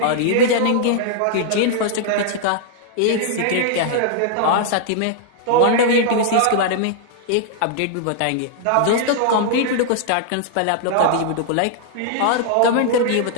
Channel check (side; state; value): both; different; correlation -0.01